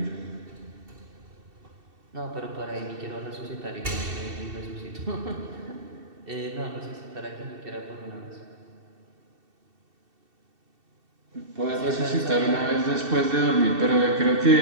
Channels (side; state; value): left; late; 2.7 ms